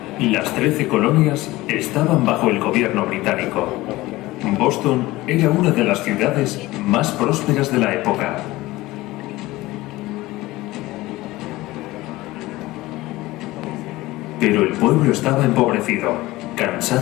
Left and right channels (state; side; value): quieter; right; 18.7 dB